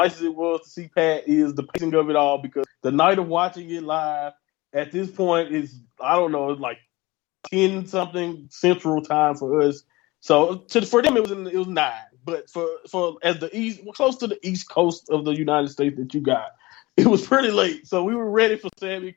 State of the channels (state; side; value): quieter; right; 21.3 dB